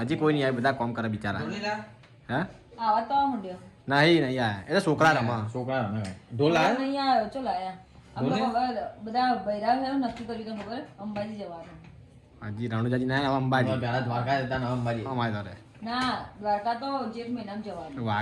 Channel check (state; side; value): identical; both; correlation 1.00